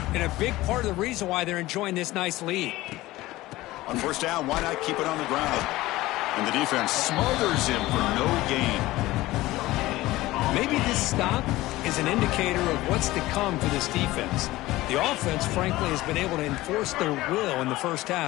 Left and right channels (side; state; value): right; quieter; 17.8 dB